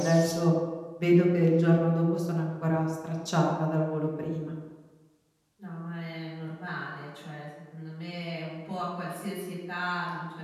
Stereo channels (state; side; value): identical; both; correlation 1.00